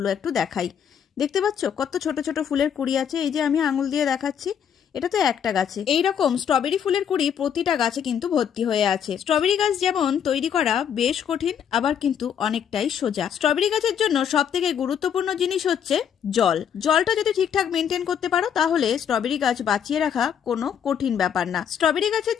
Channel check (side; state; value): right; quieter; 8.3 dB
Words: একটু দেখাই। দেখতে পাচ্ছ কত ছোট ছোট ফুলের কুঁড়ি আছে, এই যে আমি আঙুল দিয়ে দেখাচ্ছি, এটা তো একটা গাছে। এইরকম স্ট্রবেরি ফুলের কুঁড়ি প্রতিটা গাছে কিন্তু ভর্তি হয়ে আছে। স্ট্রবেরি গাছ যেমন তৈরি করা বেশ কঠিন, আবার কিন্তু অনেকটাই সোজা। স্ট্রবেরি গাছের জন্য সব থেকে গুরুত্বপূর্ণ জিনিস হচ্ছে জল। জলটা যদি ঠিকঠাক মেনটেন করতে পারো তাহলে স্ট্রবেরি গাছ বাঁচিয়ে রাখা কোনো কঠিন ব্যাপার না। স্ট্রবেরি গাছের